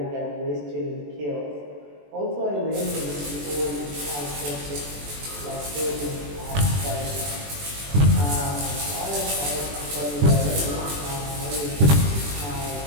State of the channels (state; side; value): late; left; 21 ms